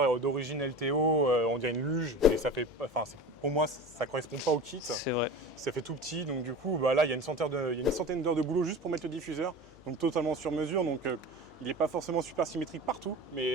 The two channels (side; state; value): left; noise; hum, 26 dB below the sound